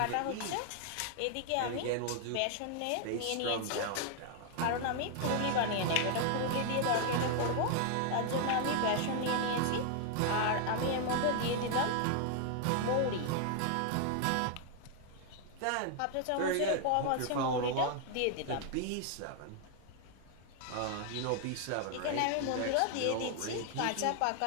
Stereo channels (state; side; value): different; both; correlation 0.00